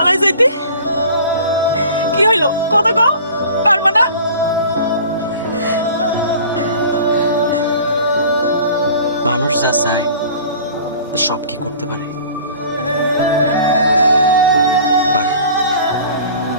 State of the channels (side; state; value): both; inverted; correlation -0.44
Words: যাইতে? কি হইলো কথা কও, পারবা না? মানুষ যা চায় তা সব কি করতে পারে? পারে।